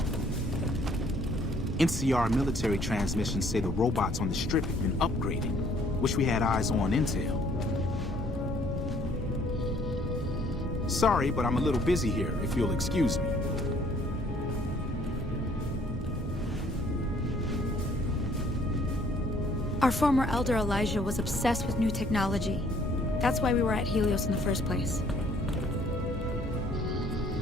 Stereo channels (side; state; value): both; normal; correlation 0.61